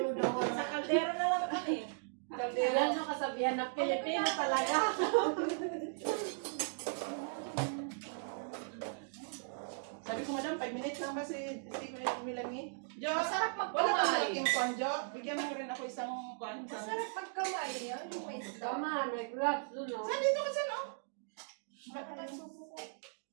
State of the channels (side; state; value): left; silent; digital silence